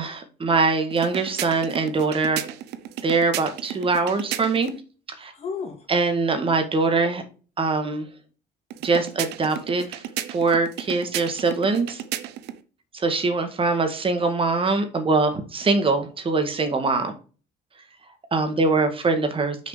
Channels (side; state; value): left; quieter; 3.5 dB